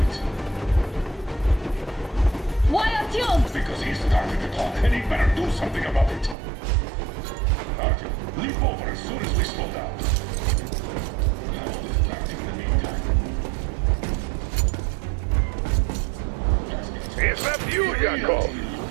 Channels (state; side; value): drops out; left; at 6.4 s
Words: Why Artyom? Because he started the clock, and he better do something about it. Artyom, leap over as soon as we slow down. I will distract him in the meantime. Is that you, Yakov?